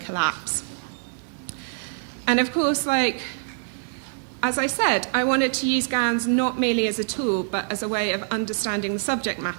collapse. And of course, like, as I said, I wanted to use GANs not merely as a tool, but as a way of understanding the subject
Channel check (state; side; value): silent; left; digital silence